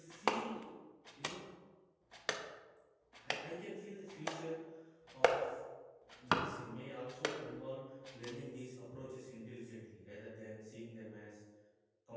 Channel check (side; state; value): both; identical; correlation 1.00